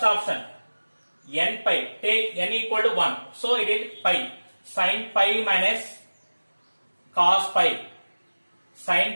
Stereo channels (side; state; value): both; inverted; correlation -1.00